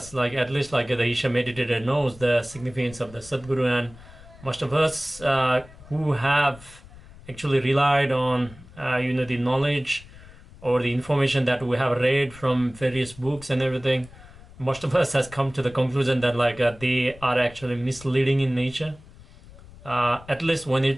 like at least like the Isha meditator knows the significance of the Sadhguru, and most of us who have actually relied on the knowledge or the information that we have read from various books and everything, most of us has come to the conclusion that they are actually misleading in nature, at least when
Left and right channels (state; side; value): noise; left; rumble, 20 dB below the sound